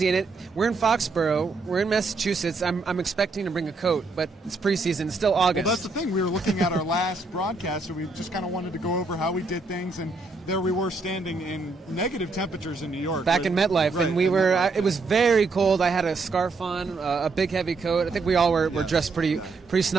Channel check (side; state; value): left; quieter; 3.7 dB